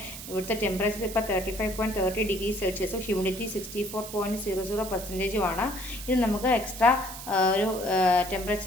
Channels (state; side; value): noise; right; hiss, 11 dB below the sound